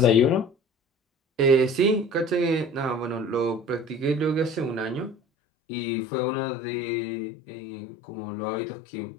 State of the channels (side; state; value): right; drops out; at 5.2 s